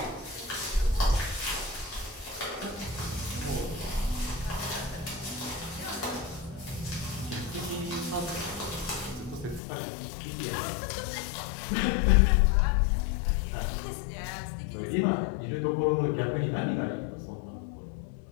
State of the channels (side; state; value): right; drops out; at 9.6 s